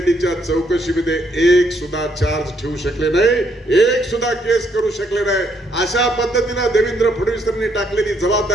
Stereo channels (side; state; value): both; normal; correlation 0.72